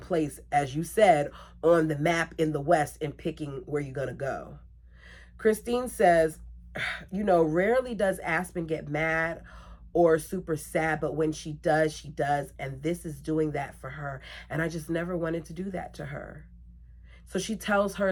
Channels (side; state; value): both; identical; correlation 1.00